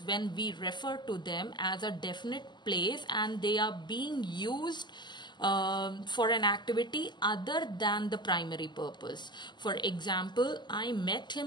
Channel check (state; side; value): late; right; 0.21 ms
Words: when we refer to them as a definite place and they are being used for an activity other than the primary purpose. For example, I met